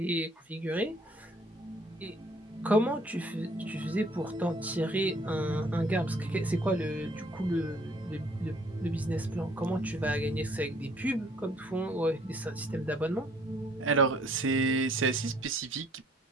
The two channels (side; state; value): both; normal; correlation 0.61